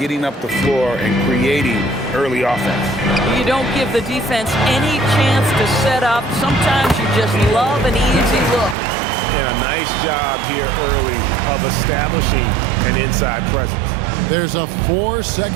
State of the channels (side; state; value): left; drops out; at 8.8 s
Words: up the floor and creating early offense. You don't give the defense any chance to set up. Sometimes you just love an easy look. And a nice job here early of establishing an inside presence. There's a